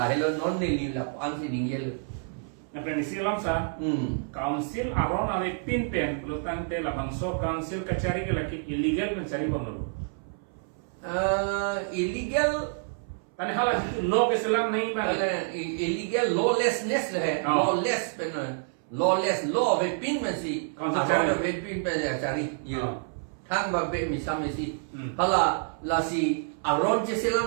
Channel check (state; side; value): silent; left; 59 dB below the other